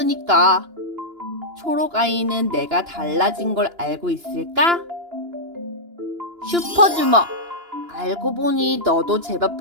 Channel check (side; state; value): left; late; 2.9 ms